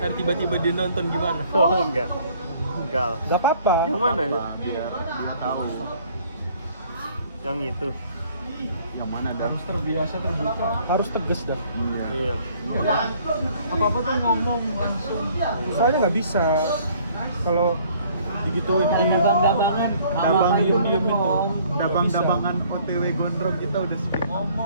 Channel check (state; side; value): inverted; both; correlation -0.58